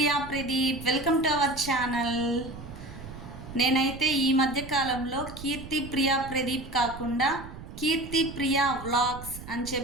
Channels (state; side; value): noise; right; rumble, 13 dB below the sound